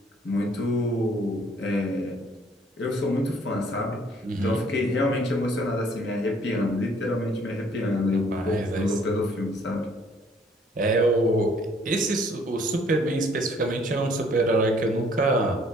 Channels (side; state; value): both; normal; correlation 0.60